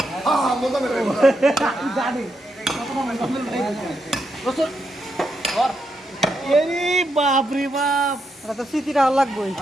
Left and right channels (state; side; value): normal; both; correlation 0.82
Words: হ্যাঁ বলতাম জানি এরি বাপ রে বাপ এটা তো স্মৃতিটা ভালো লাগবেই।